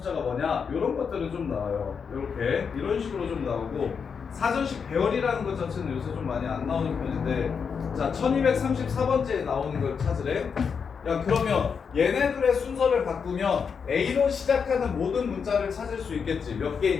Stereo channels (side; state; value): right; quieter; 6.2 dB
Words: 뭐냐? 이런 것들은 좀 나와요. 이렇게 이런 식으로 좀 나오고 사전식 배열이라는 것 자체는 요새 좀 많이 안 나오는 편인데 자 1234번째에 나오는 걸 찾으래. 야 그러면 얘네들의 순서를 바꾸면 A로 시작하는 모든 문자를 찾을 수 있겠지. 몇 개